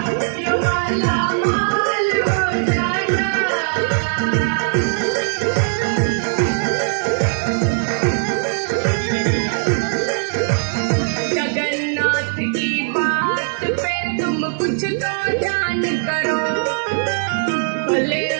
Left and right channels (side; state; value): left; silent; digital silence